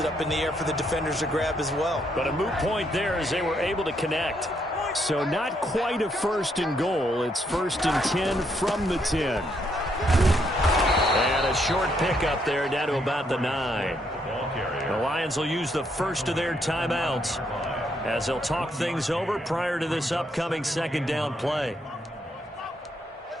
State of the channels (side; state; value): both; normal; correlation 0.75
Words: up in the air for the defenders to grab as well. But a moot point there as they were able to connect. So not quite a 1st and goal. It's 1st and 10 from the 10. And a short pickup there down to about the 9. The Lions will use the first of their timeouts as they'll talk things over prior to this upcoming 2nd down play.